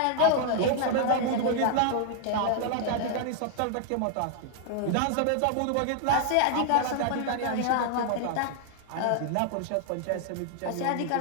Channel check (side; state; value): both; different; correlation 0.00